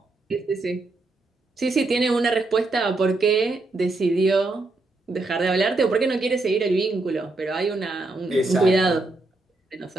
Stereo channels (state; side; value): quieter; left; 3.1 dB